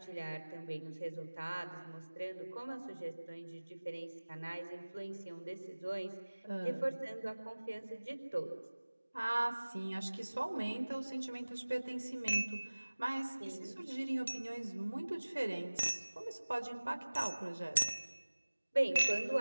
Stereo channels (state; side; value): inverted; both; correlation -1.00